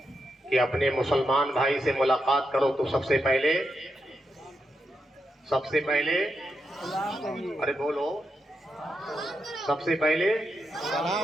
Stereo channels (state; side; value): normal; both; correlation 0.84